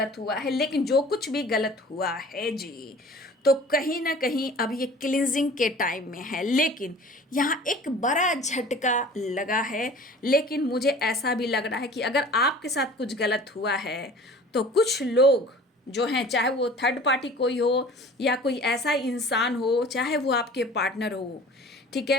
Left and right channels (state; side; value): normal; both; correlation 0.45